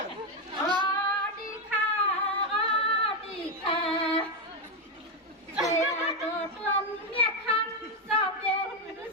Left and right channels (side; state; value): both; normal; correlation 0.06